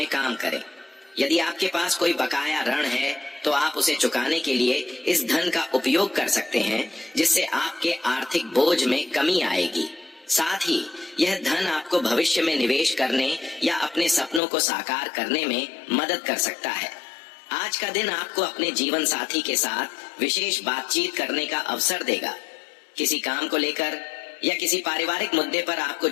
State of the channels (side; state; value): right; drops out; at 14.4 s